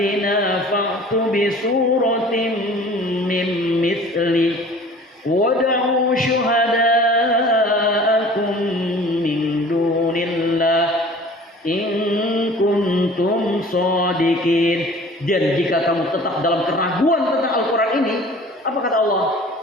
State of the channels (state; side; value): normal; both; correlation 0.46